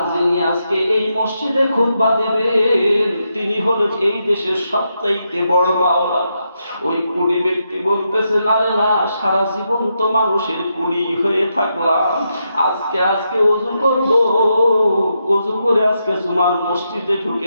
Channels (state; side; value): inverted; both; correlation -0.83